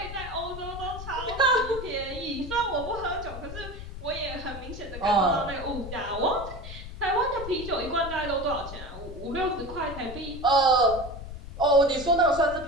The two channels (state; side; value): noise; left; rumble, 11 dB below the sound